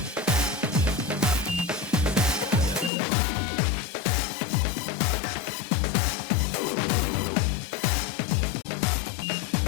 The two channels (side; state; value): right; drops out; at 2.9 s